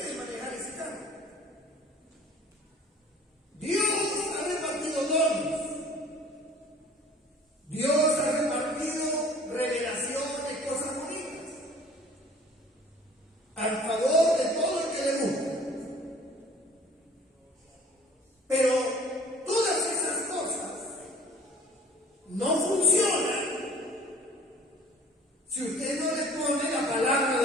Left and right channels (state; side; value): normal; both; correlation 0.49